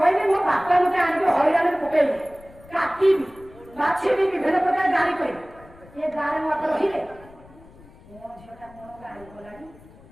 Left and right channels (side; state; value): left; noise; rumble, 23 dB below the sound